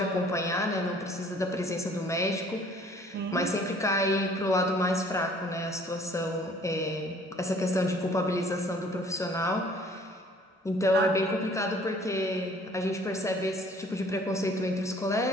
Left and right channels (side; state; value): both; normal; correlation 0.55